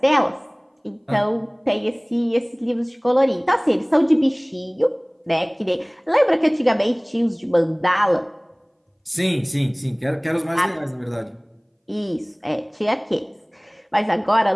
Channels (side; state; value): both; identical; correlation 1.00